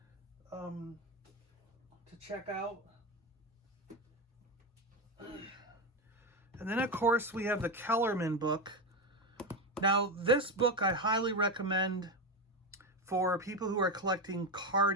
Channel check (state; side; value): normal; both; correlation 0.14